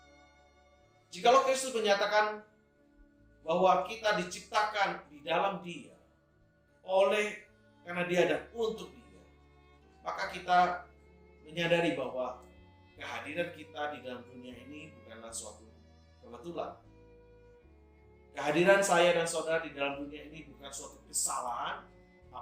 Jikalau Kristus menyatakan bahwa kita diciptakan di dalam Dia, karena Dia dan untuk Dia, maka kita menyadari bahwa kehadiran kita di dalam dunia ini bukanlah suatu kebetulan. Kehadiran saya dan saudara di dalam dunia ini bukan suatu kesalahan,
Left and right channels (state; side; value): identical; both; correlation 1.00